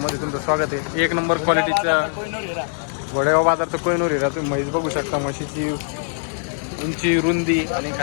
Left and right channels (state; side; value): silent; right; 64 dB below the other